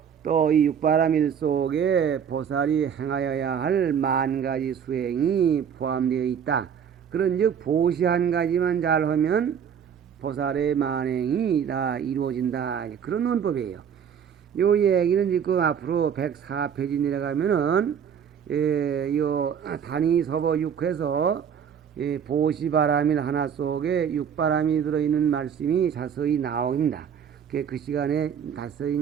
또 이 육바라밀 속에 보살이 행하여야 할 만 가지 수행이 포함되어 있다. 그런즉 보시 한 가지만 잘하면 보살의 만행이 다 이루어진다, 그런 논법이에요. 요 얘기는 지금 앞으로 104페이지 내려가면은 요 단위 서보 6에서 보시바라밀 하나 속에 육바람이 들어있는 말씀이 자세히 나옵니다. 그 시간에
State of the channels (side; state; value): left; quieter; 7.9 dB